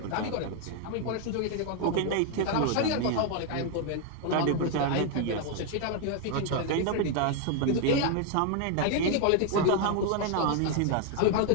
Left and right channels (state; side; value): different; both; correlation 0.00